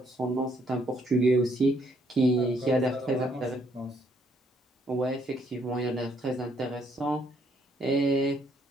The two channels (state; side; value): normal; both; correlation 0.69